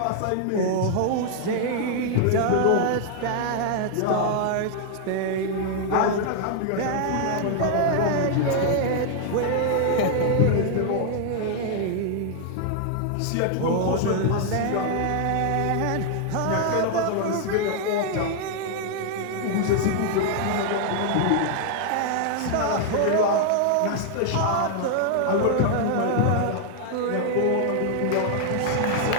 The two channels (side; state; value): both; different; correlation 0.00